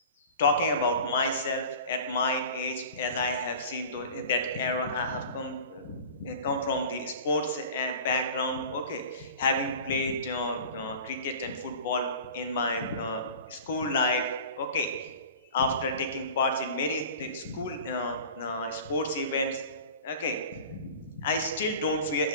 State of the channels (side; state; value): both; inverted; correlation -0.39